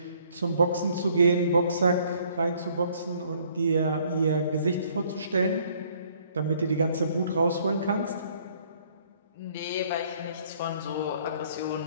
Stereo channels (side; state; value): both; inverted; correlation -0.61